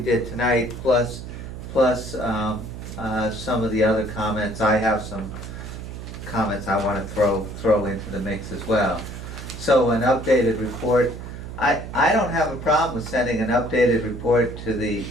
tonight, plus some of the other comments. I have some comments I want to throw into the mix as well. So an updated report. I don't have a problem with sending an updated report to the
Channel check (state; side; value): noise; right; hum, 10 dB below the sound